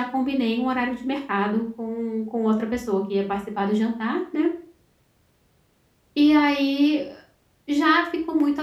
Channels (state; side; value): identical; both; correlation 1.00